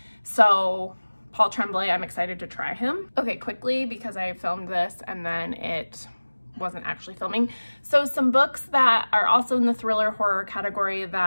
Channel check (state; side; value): inverted; both; correlation -1.00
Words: So Paul Tremblay, I'm excited to try him. Okay, quickly, because I filmed this and then it wasn't actually filming. So some books that are also in the thriller horror category